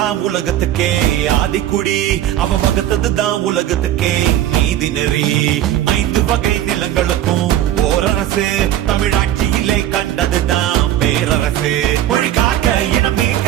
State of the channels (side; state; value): left; quieter; 12.3 dB